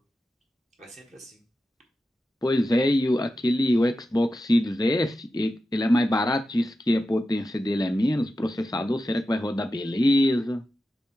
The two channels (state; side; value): normal; both; correlation 0.91